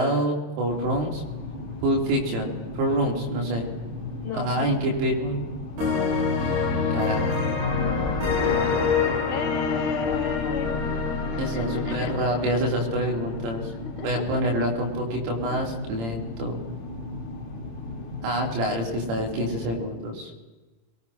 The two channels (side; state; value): left; late; 26 ms